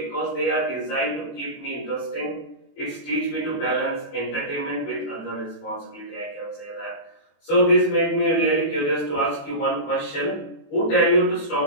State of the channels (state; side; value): late; right; 21 ms